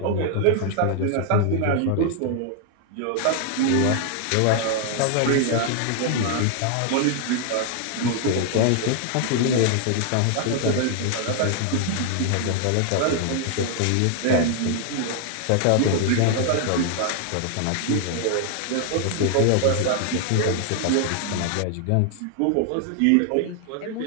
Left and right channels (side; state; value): both; different; correlation 0.00